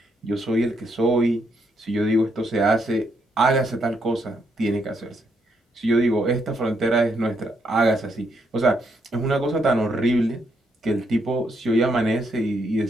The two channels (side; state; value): both; normal; correlation 0.76